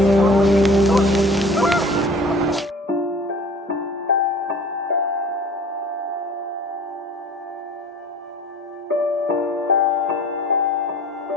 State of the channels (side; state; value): both; normal; correlation 0.46